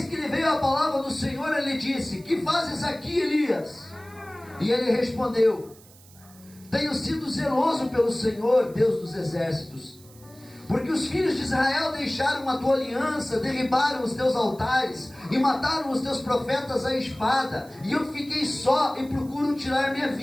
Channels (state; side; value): noise; right; hiss, 24 dB below the sound